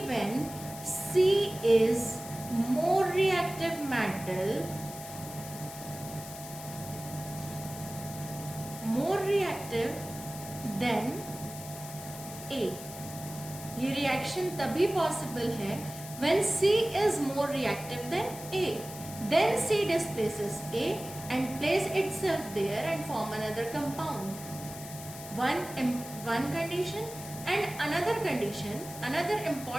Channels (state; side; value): noise; left; hiss, 13 dB below the sound